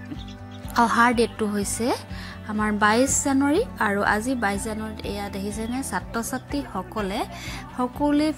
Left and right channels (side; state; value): both; identical; correlation 1.00